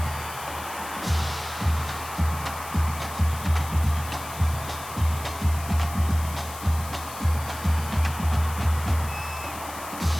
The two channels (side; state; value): left; noise; hiss, 13 dB below the sound